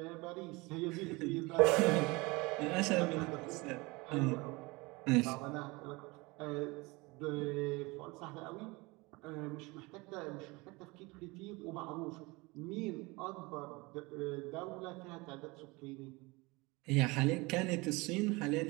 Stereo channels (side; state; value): left; quieter; 24.4 dB